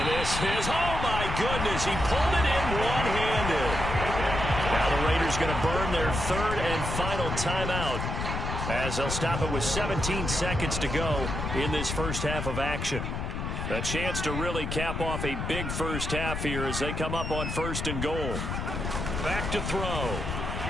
this is, oh my goodness, he pulled it in one-handed. Now the Raiders going to burn their 3rd and final timeout as they'll stop it with 17 seconds to go in this first half of action. A chance to really cap off a big first half here as they come up on 1st and goal. Back to throw.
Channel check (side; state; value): left; noise; rumble, 3 dB below the sound